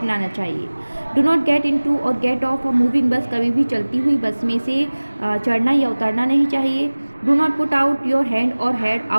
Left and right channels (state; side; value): inverted; both; correlation -1.00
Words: चाहिए. Do not get into or get off a moving bus. कभी भी चलती हुई बस में से चढ़ना या उतरना नहीं चाहिए. Do not put out your hand और head